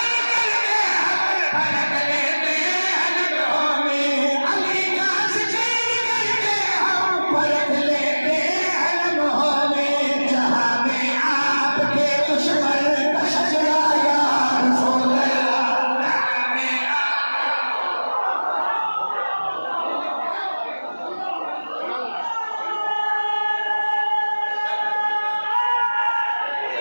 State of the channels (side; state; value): both; inverted; correlation -1.00